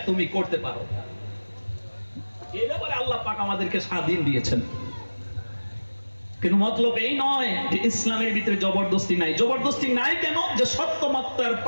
তুমি করতে পারো। এই ব্যাপারে আল্লাহ পাক আমাদেরকে স্বাধীন দিয়েছেন। কিন্তু মতলব এই নয় যে ইসলামের ভিতরে জবরদস্তি নাই। জবরদস্তি নাই কেন? যে সত্য মিথ্যার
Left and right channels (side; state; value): both; inverted; correlation -1.00